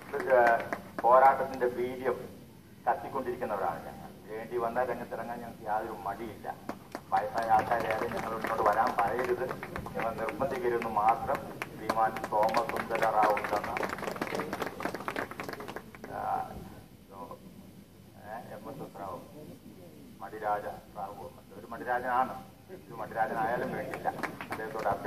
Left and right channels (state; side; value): identical; both; correlation 1.00